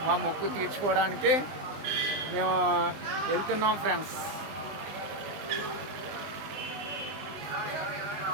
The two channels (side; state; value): left; late; 20 ms